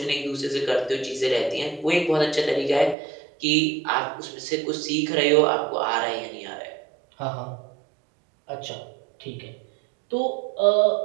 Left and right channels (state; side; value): drops out; left; at 3.0 s